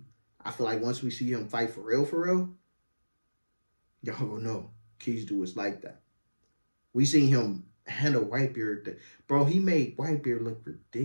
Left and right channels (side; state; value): both; inverted; correlation -1.00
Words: I feel like once we see him fight for real, y'all gonna know Kizu is like that. We seen him handle Whitebeard. Bro, he made Whitebeard look